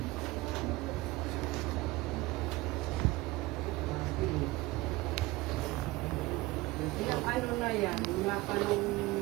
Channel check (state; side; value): quieter; left; 20.5 dB